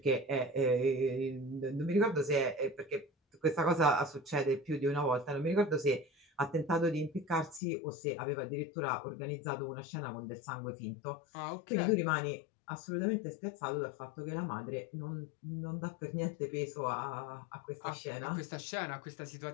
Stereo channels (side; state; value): right; drops out; at 7.6 s